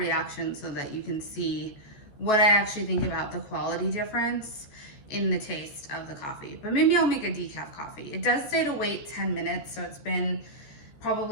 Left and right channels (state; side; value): late; right; 14 ms